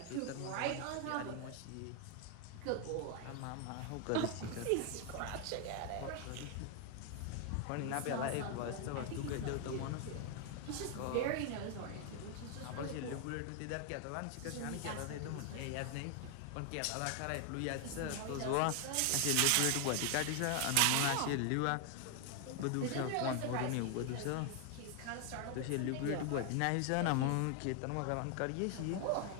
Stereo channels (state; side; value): different; both; correlation 0.00